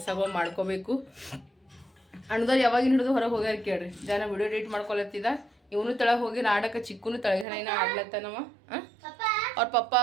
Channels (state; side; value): drops out; left; at 7.5 s